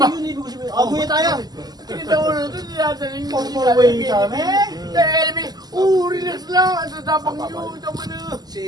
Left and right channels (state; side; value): late; left; 0.20 ms